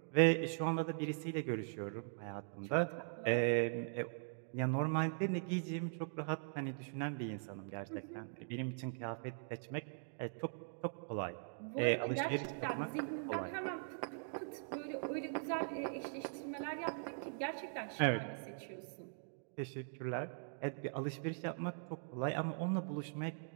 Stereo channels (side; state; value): left; silent; digital silence